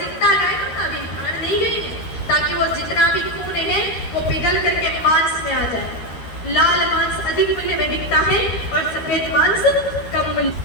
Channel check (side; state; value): right; late; 13 ms